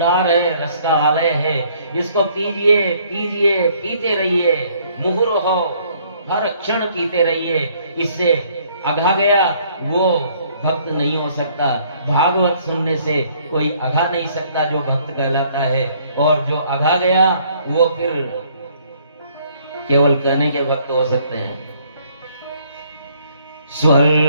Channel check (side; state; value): both; inverted; correlation -0.63